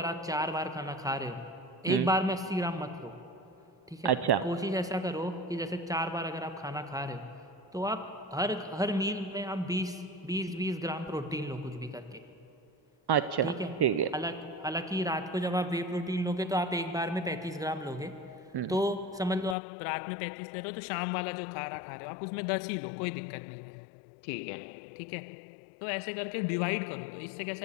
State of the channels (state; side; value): drops out; right; at 19.6 s